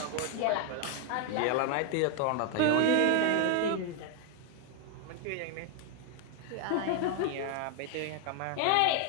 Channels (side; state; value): both; different; correlation 0.01